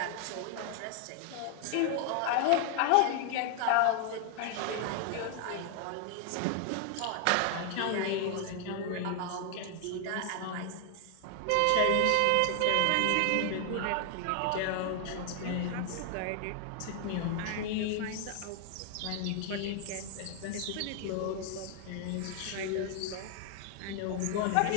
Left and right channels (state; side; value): different; both; correlation 0.00